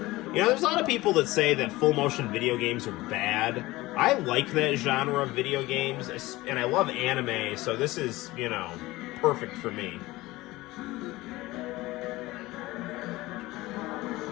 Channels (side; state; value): right; quieter; 19.3 dB